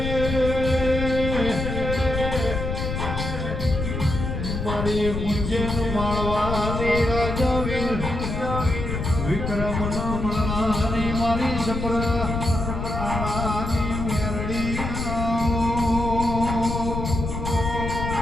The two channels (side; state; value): left; noise; rumble, 3 dB below the sound